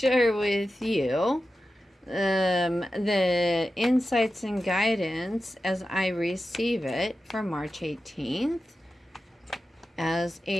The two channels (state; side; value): normal; both; correlation 0.92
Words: with you the insights and guidance as I receive it for March 18th as